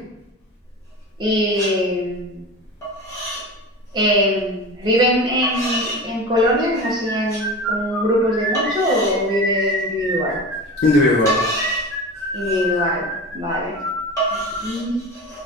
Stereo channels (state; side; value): normal; both; correlation 0.31